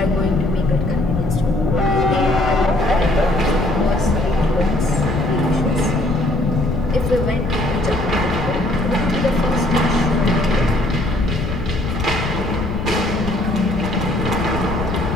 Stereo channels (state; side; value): noise; left; rumble, 4 dB below the sound